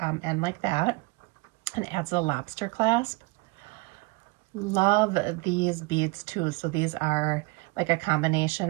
end like that and adds a lobster clasp. Love these beads too. So these are like a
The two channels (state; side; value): quieter; left; 24.5 dB